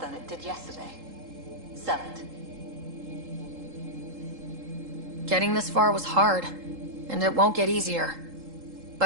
than it did yesterday. Sell it. Getting this far was hard, and it won't get easier.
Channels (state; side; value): late; left; 3.8 ms